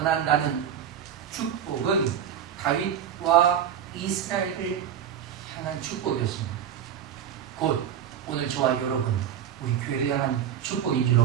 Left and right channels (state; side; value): quieter; left; 9.1 dB